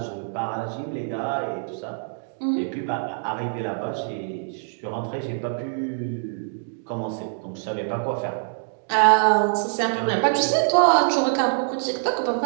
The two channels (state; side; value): silent; left; digital silence